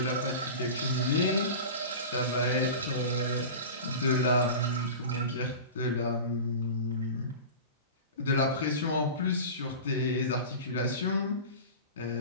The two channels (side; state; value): both; inverted; correlation -0.32